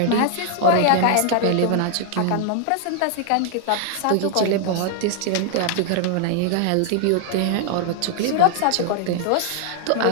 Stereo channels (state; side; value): different; both; correlation 0.00